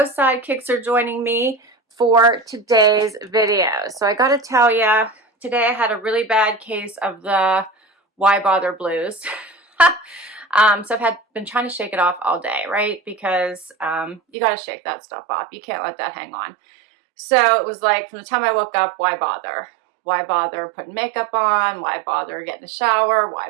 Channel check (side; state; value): left; drops out; at 14.2 s